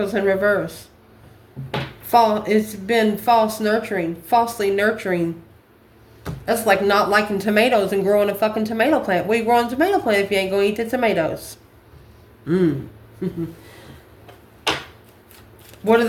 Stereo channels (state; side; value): identical; both; correlation 1.00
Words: in reverse. It's been false nurturing. Falsely nurturing. That's like not liking tomatoes and growing a fucking tomato plant. Where you growing a tomato plant if you ain't going to eat the tomatoes? What are